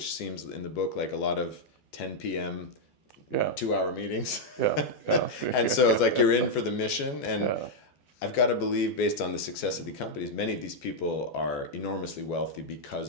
seems in the book like a lot of 10 p.m. 2-hour meetings. And so it's like you're in for the mission. And I've got to believe, based on the success of the companies, many of these people are enormously wealthy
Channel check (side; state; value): right; late; 12 ms